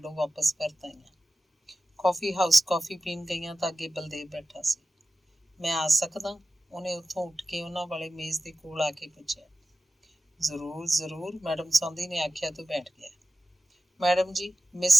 ਵਾਪਸ ਪਰਤ ਆਈਆਂ। ਕੌਫੀ ਹਾਊਸ ਕੌਫੀ ਪੀਣ ਗਈਆਂ ਤਾਂ ਅੱਗੇ ਬਲਦੇਵ ਬੈਠਾ ਸੀ। ਮੈਂ ਆ ਸਕਦਾ? ਉਹਨੇ ਉੱਥੋਂ ਉੱਠ ਕੇ ਉਹਨਾਂ ਵਾਲੇ ਮੇਜ਼ ਦੇ ਕੋਲ ਆ ਕੇ ਪੁੱਛਿਆ। ਜ਼ਰੂਰ ਜ਼ਰੂਰ, ਮੈਡਮ ਸੌਂਦੀ ਨੇ ਆਖਿਆ ਤੋਂ ਬੈਠ ਗਿਆ। ਮੈਡਮ ਜੀ, ਮਿਸ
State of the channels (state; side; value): normal; both; correlation 0.94